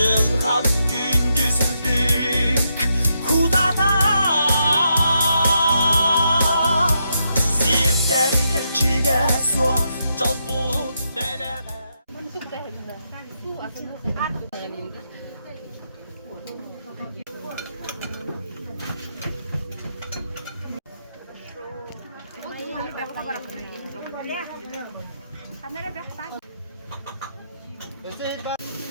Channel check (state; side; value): inverted; both; correlation -0.81